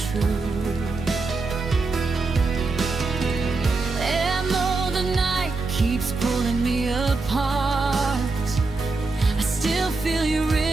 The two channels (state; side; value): quieter; left; 3.8 dB